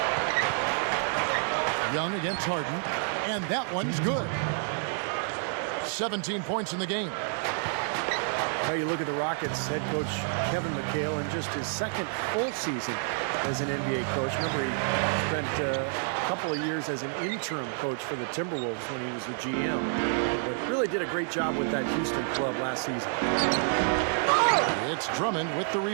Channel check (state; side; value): silent; left; 59 dB below the other